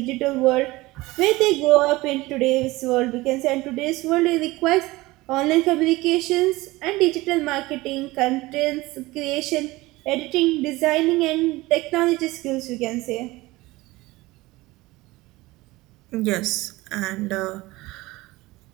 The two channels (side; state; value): left; quieter; 20.2 dB